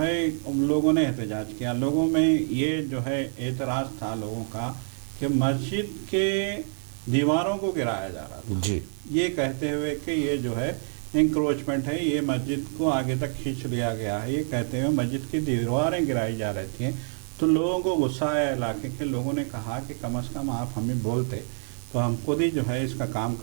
لوگوں نے احتجاج کیا۔ لوگوں میں یہ جو ہے اعتراض تھا لوگوں کا کہ مسجد کے دیواروں کو گرایا جا رہا تھا، جی یہ کہتے ہوئے کہ یہ جو ہے انکروچمنٹ ہے، یہ مسجد کو آگے تک کھینچ لیا گیا ہے، یہ کہتے ہوئے مسجد کی دیواریں گرائی جا رہی تھیں۔ تو لوگوں کو غصہ آیا، علاقے کے لوگوں نے کہا کہ کم از کم آپ ہمیں بولتے تو ہم خود ہی جو ہے اس کا کام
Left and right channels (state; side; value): silent; left; 60 dB below the other